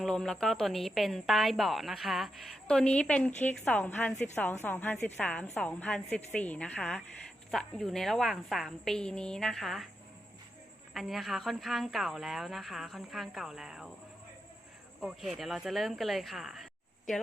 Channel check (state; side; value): normal; both; correlation 0.86